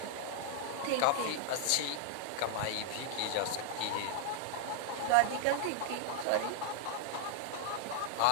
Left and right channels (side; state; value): both; different; correlation -0.01